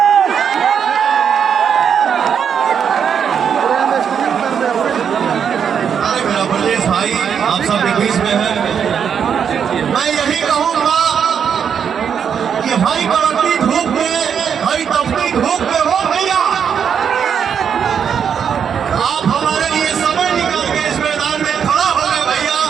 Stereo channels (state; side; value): quieter; left; 7.6 dB